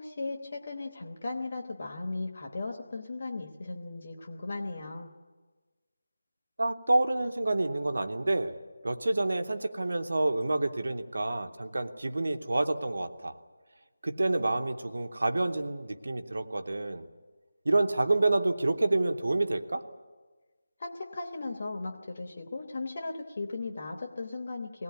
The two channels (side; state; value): both; inverted; correlation -0.97